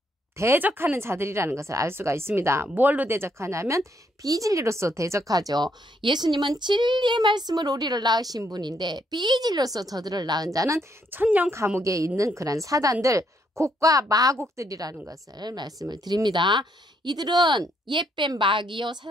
대적하는 자들이라는 것을 알 수가 있습니다. 뭘로 대적하냐면 비진리로서 대적하죠. 예수님은 진리의 말씀으로 우리를 낳으신 분인데 비진리로서 저들을 낳은 자는 천년 감옥에 있는 그런 사단들, 곡과 마곡들이라는 것을 말씀을 드립니다. 이들은 옛뱀 마귀요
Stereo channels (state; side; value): normal; both; correlation 0.73